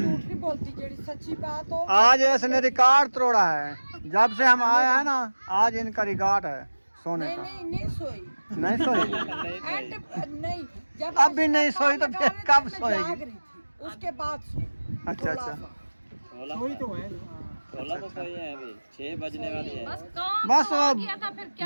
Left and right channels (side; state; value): both; inverted; correlation -1.00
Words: नहीं बोलती, जेड़ी सच्ची बात हो। आज इसने रिकॉर्ड तोड़ा है। जब से हम आए हैं ना, आज इनका रिकॉर्ड है सोने नहीं का। नहीं नहीं सोई। नहीं सोई? एंड नहीं, जब अब भी नहीं सोई तो फिर कब मैं सोएगी? जाग रही थी, उसके बाद सोई। अच्छा अच्छा। वही तो है। बस काम बस तो आ गया था, फिर